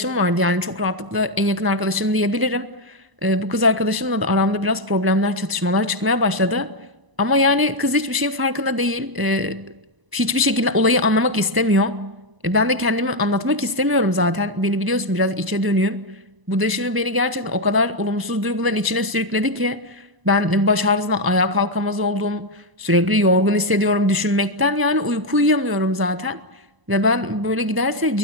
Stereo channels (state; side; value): late; left; 1.0 ms